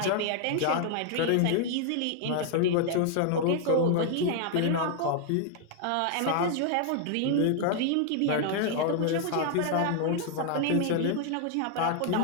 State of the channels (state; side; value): different; both; correlation 0.00